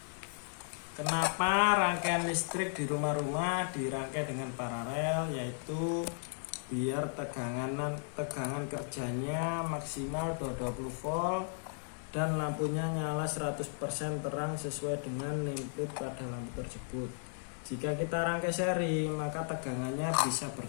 Kenapa rangkaian listrik di rumah-rumah dirangkai dengan paralel, yaitu biar tegangan kerjanya maksimal 220 volt dan lampunya nyala 100% terang sesuai dengan input pada lampu tersebut. Jika kita rangkai seri, maka tegangannya bisa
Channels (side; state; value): right; silent; digital silence